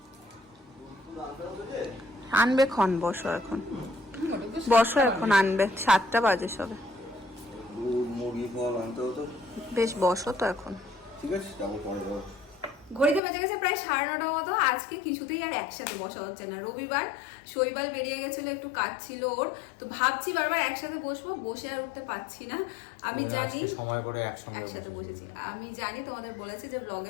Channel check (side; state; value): right; drops out; at 13.2 s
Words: আনবে ক্ষণ। বসো এখন, বসো এখন আনবে, 7টা বাজে সবে। মুরগি ফল আনতে হতো। বেশ বসো তো এখন, ঠিক আছে, যাবো পরে যাবো। ঘড়িতে বেজে গেছে প্রায় 9:30 মতো। আজকে কিছুতেই আর একসাথে বসা হচ্ছে না। রবিবার, শৈবাল বেরিয়ে গেছিল, একটু কাজ ছিল ওর, তো ভাবছি বারবার একসাথে বসবো, বসে আর উঠতে পারছি না। আমি জানি সময় করে একসাথে বসেছি, আমি জানি তোমাদের বলেছি যে